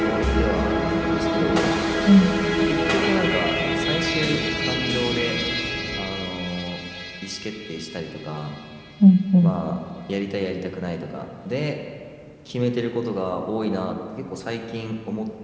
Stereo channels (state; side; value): identical; both; correlation 1.00